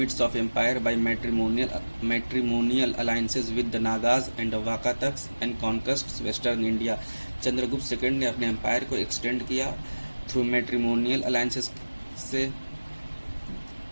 of empire by matrimonial alliances with the Nagas and Vakatakas and conquests western India. Chandragupta second ने अपने एम्पायर को एक्सटेंड किया थ्रू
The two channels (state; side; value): inverted; both; correlation -1.00